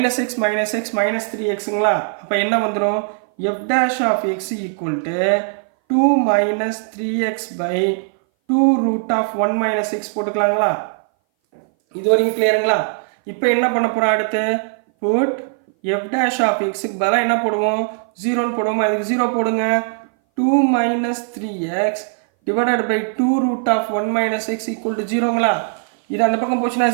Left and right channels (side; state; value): left; silent; 60 dB below the other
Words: minus X -3xங்களா. அப்போ என்ன வந்துடும் F dash of X equal to 2 minus 3x by 2 root of 1 minus X போட்டுக்கலாங்களா. இது வரைக்கும் கிளியருங்களா. இப்போ என்ன பண்ண போகிறோம் அடுத்து புட் எஃப் டேஷ் ஆஃப் எக்ஸுக்கு பதிலாக என்ன போடுவோம் 0ன்னு போடுவோமா. அதுக்கு 0 போடுங்க. 2 minus 3x divided by 2 root of 1 minus X equal to 0ங்களா. இது அந்த பக்கம் போச்சுன்னா